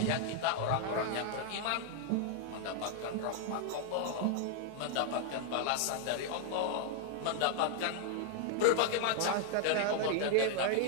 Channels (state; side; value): different; both; correlation 0.00